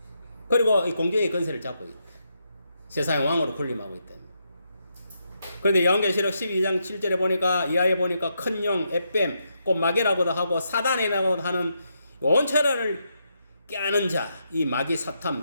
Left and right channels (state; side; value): inverted; both; correlation -0.81